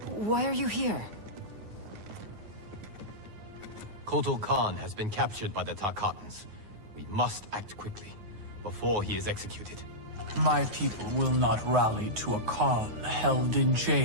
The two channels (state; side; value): late; left; 9.5 ms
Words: why are you here? Kotal Khan has been captured by the Tarkatans. We must act quickly, before he is executed. My people will not rally to a Khan held in